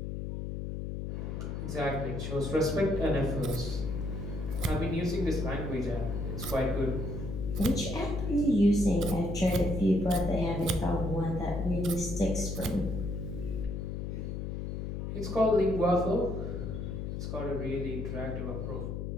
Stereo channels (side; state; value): left; noise; hum, 4 dB below the sound